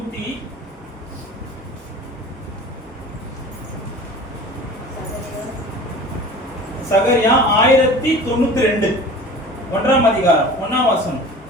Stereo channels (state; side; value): normal; both; correlation 0.40